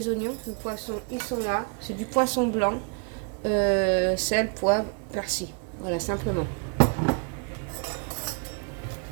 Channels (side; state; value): left; quieter; 35.1 dB